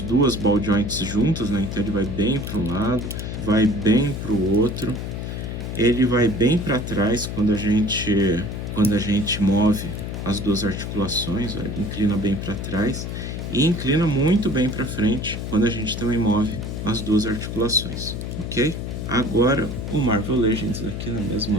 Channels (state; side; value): noise; left; hum, 5 dB below the sound